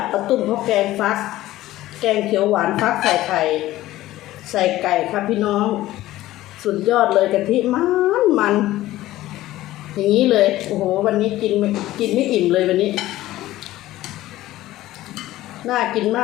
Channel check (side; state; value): right; quieter; 15.7 dB